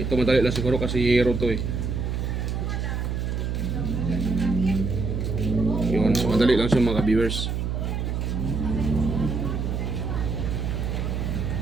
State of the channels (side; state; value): right; noise; hum, 1 dB below the sound